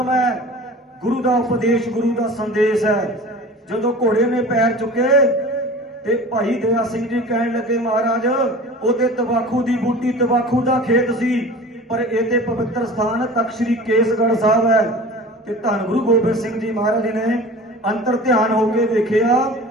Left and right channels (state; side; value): normal; both; correlation 0.39